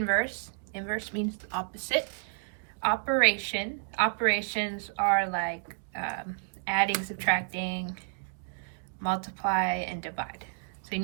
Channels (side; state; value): left; silent; digital silence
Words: Inverse means the opposite operation. Operations are like adding, subtracting, multiply, and divide. So you